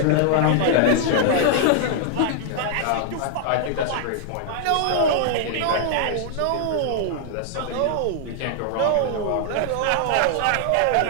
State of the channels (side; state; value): both; different; correlation 0.00